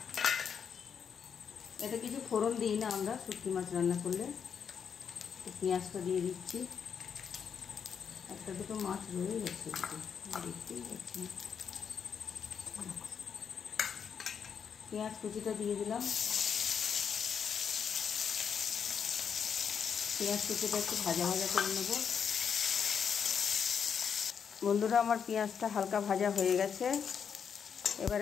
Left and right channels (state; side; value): quieter; right; 7.1 dB